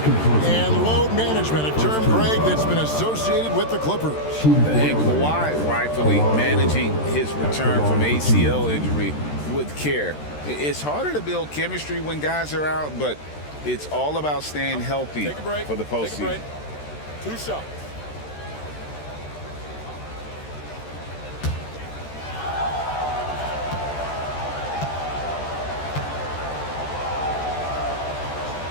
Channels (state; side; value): late; right; 13 ms